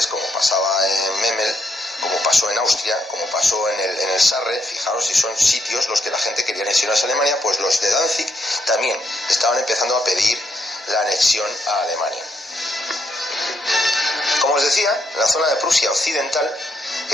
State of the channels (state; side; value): normal; both; correlation 0.76